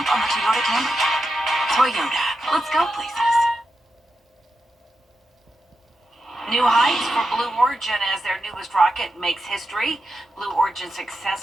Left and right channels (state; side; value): normal; both; correlation 0.88